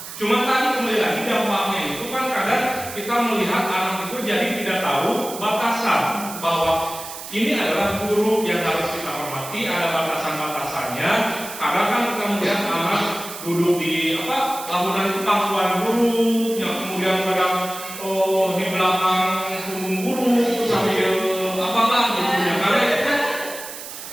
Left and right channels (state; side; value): noise; right; hiss, 11 dB below the sound